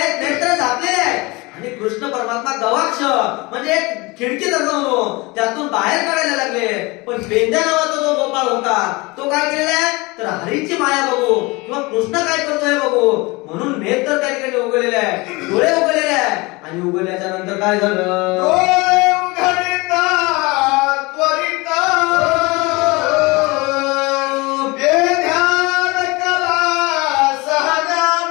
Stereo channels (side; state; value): right; quieter; 24.4 dB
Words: नेत्र झाकलेले आहे. आणि कृष्ण परमात्मा गवाक्ष म्हणजे एक खिडकी म्हणून त्यातून बाहेर काढायला लागले. पण पेंद्या नावाचा जो गोपाळ होता तो काय केलेला आहे, तर हरीची माया बघू किंवा कृष्ण काय करतोय बघू म्हणून नेत्र त्या ठिकाणी उघडलेले आहे, डोळे उघडलेले आहे. आणि उघडल्याच्या नंतर काय झालं, डोळे उघडता त्वरित बेध्यान कला